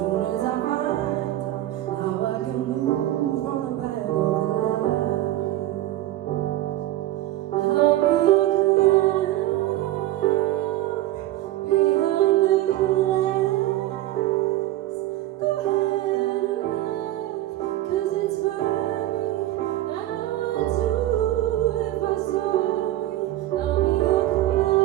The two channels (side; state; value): left; quieter; 14.9 dB